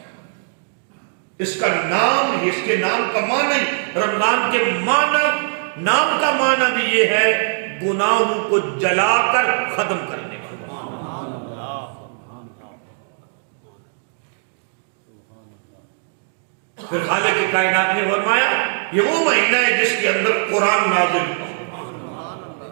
اس کا نام، اس کے نام کا معنی، رمضان کے معنی، نام کا معنی بھی یہ ہے گناہوں کو جلا کر ختم کرنے والا۔ پھر خالق کائنات نے فرمایا یہ وہ مہینہ ہے جس کے اندر قرآن نازل ہوا،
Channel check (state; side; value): silent; left; digital silence